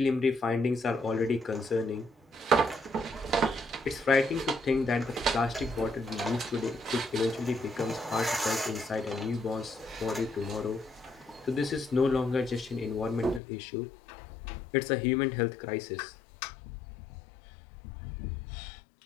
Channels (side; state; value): right; drops out; at 13.4 s